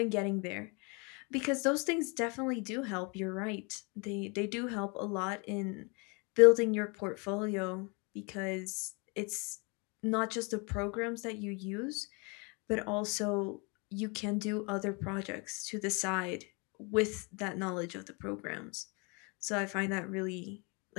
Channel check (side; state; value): right; quieter; 31.6 dB